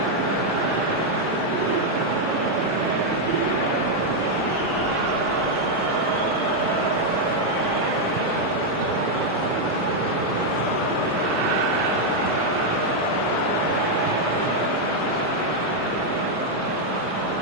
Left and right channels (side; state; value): left; late; 1.1 ms